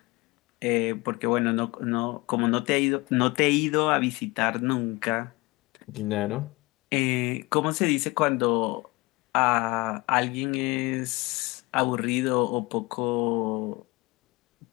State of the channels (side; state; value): right; quieter; 23.7 dB